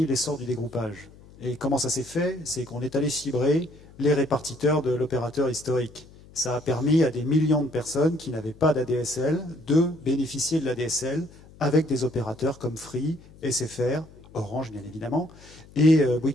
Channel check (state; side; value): noise; left; hum, 22 dB below the sound